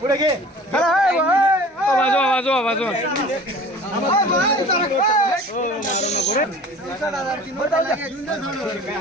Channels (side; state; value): both; normal; correlation 0.44